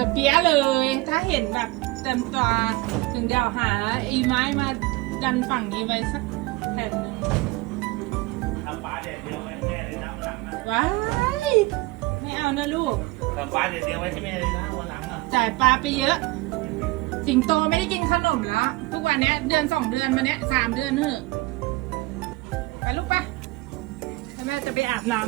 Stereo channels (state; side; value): quieter; left; 21.7 dB